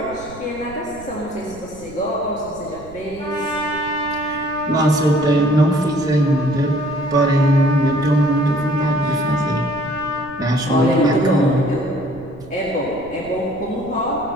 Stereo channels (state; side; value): noise; right; rumble, 19 dB below the sound